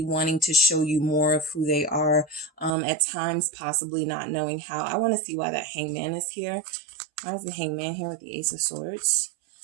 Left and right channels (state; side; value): drops out; left; at 2.7 s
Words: wanting to show you more of who they are, at times possibly not knowing how. I want to see why that Hangman is here. Why is the Hangman here with the Ace of Swords?